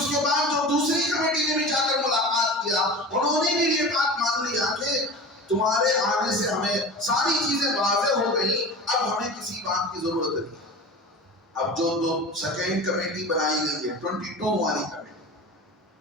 کے بعد جو دوسری کمیٹی نے بھی جا کر ملاقات کیا، انہوں نے بھی یہ بات مان لیا کہ تمہارے آنے سے ہمیں ساری چیزیں واضح ہو گئی، اب ہمیں کسی بات کی ضرورت نہیں. اب جو سیکنڈ کمیٹی بنائی گئی ہے 22 والی کمیٹی،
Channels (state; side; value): normal; both; correlation 0.33